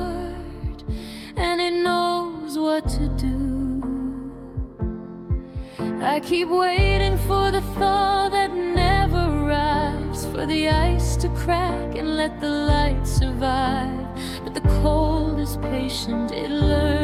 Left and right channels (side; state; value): both; identical; correlation 1.00